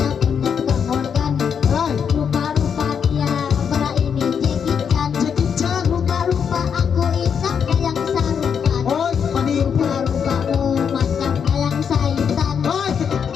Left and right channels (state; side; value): quieter; right; 7.2 dB